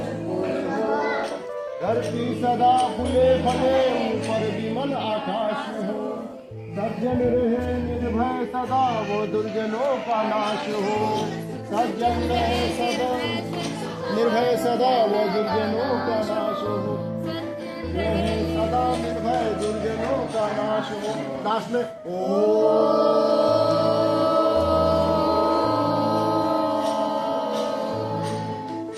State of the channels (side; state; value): both; identical; correlation 1.00